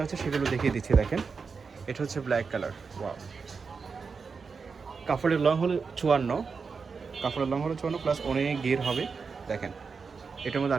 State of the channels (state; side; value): quieter; left; 5.2 dB